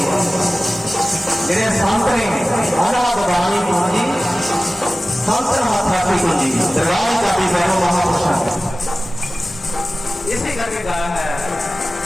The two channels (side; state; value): both; normal; correlation 0.96